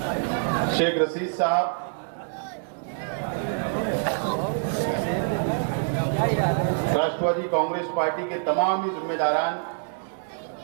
शेख रशीद साहब, राष्ट्रवादी कांग्रेस पार्टी के तमाम ही जिम्मेदारान,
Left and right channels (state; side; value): silent; left; digital silence